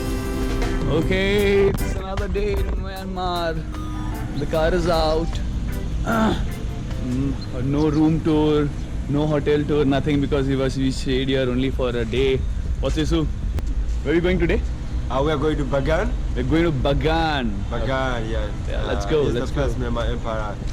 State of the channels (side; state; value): both; identical; correlation 1.00